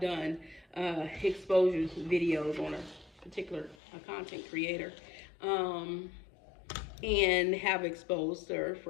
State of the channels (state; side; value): drops out; right; at 3.8 s